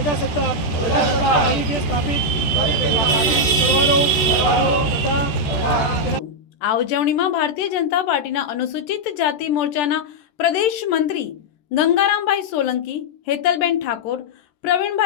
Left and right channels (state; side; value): late; right; 14 ms